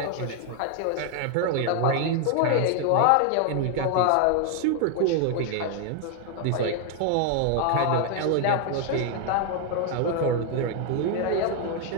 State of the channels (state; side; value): different; both; correlation 0.00